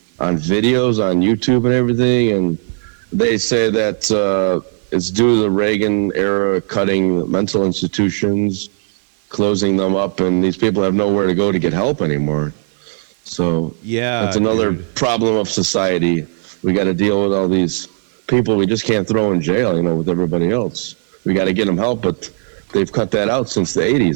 on videos on YouTube and everything, and they say that it's due to the Reagan era cutting mental institutions, closing them up, and these people have nowhere to go to get help anymore. So that's another problem of society. We got to deal with all these people we just can't throw in jail, with everybody else. We got to get them help, but they've cut that out since the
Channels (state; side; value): silent; left; 62 dB below the other